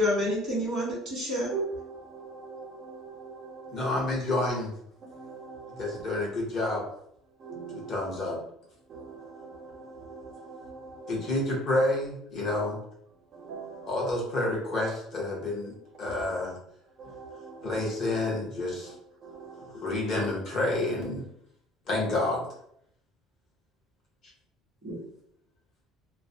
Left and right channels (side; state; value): both; normal; correlation 0.53